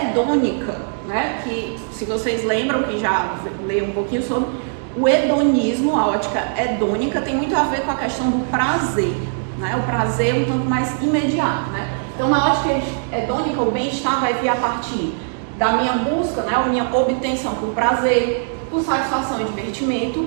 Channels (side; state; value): left; silent; digital silence